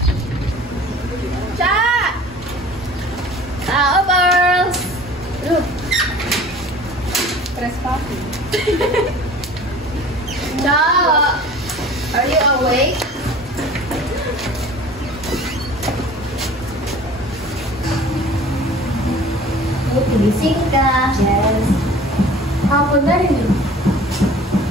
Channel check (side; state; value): both; normal; correlation 0.45